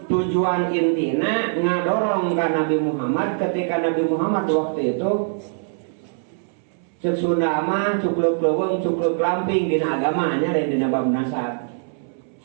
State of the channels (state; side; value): silent; left; 64 dB below the other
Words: Tujuan intina ngadorong ka Nabi Muhammad ketika Nabi Muhammad waktu itu cek Sunda mah cukluk leuweung cukluk lamping dina agamanya dan dina bab nasab.